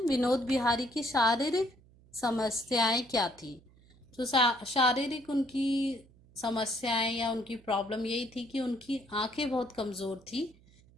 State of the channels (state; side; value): noise; right; hum, 27 dB below the sound